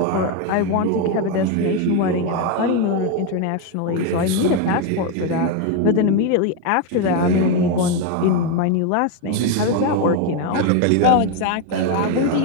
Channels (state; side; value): different; both; correlation 0.02